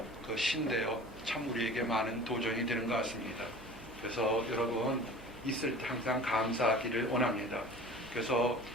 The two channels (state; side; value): noise; right; hum, 20 dB below the sound